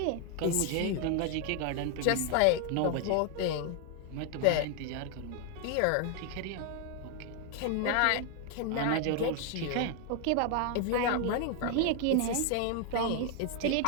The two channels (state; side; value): different; both; correlation 0.00